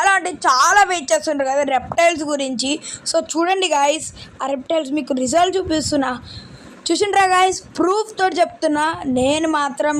అంటే చాలా వెయిట్ చేస్తుంటారు కదా రెప్టైల్స్ గురించి. సో చూడండి గాయస్, ఆ రెప్టైల్స్ మీకు రిజల్ట్ చూసిండ్రా గాయస్, ప్రూఫ్ తోటి చెప్తున్నా. నేను మాత్రం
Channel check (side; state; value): both; identical; correlation 1.00